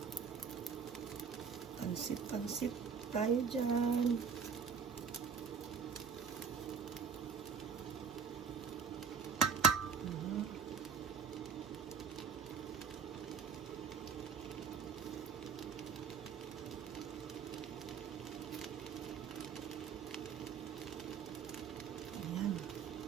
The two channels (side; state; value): left; quieter; 6.4 dB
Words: Pansit-pansit tayo dyan.